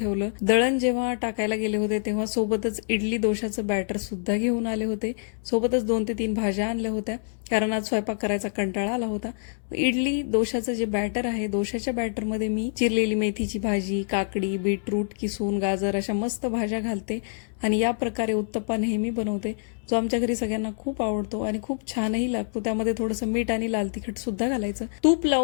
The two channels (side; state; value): right; silent; digital silence